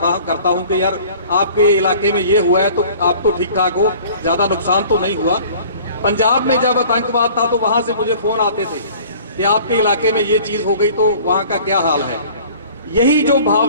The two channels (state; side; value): inverted; both; correlation -0.48